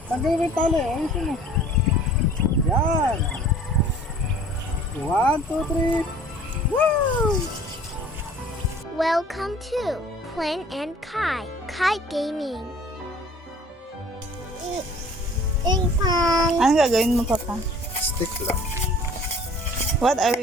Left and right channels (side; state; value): both; normal; correlation 0.50